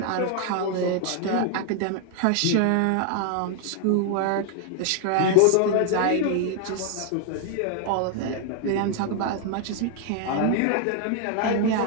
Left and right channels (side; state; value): both; different; correlation 0.00